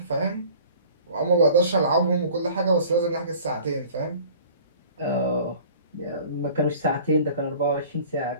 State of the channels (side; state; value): both; inverted; correlation -0.46